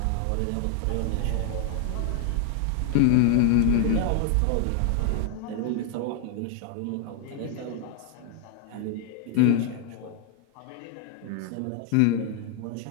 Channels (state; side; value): different; both; correlation 0.00